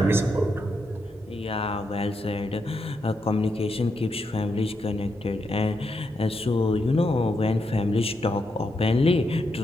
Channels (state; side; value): normal; both; correlation 0.82